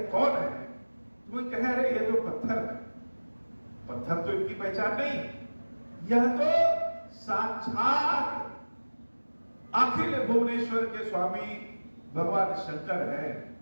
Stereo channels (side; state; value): both; inverted; correlation -1.00